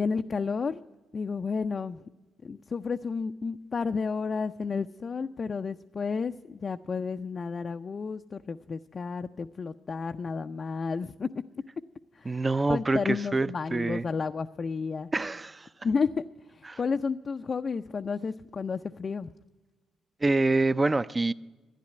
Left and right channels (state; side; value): normal; both; correlation 0.90